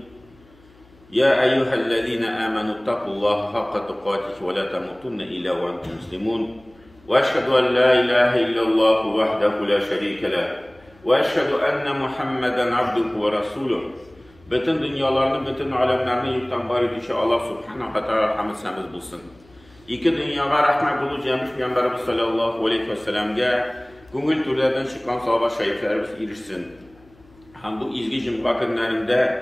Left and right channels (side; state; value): left; noise; hum, 28 dB below the sound